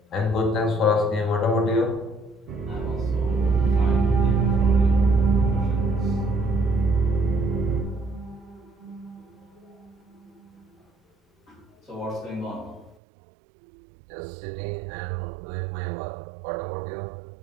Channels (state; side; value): drops out; left; at 13.0 s